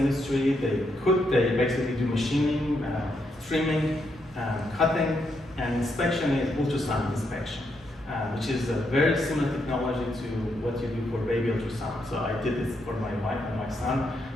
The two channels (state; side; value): normal; both; correlation 0.79